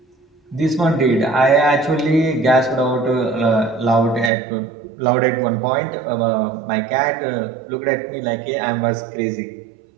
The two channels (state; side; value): drops out; left; at 4.3 s